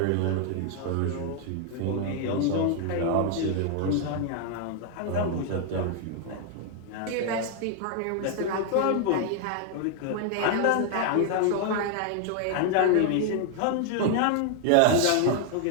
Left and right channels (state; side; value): different; both; correlation 0.00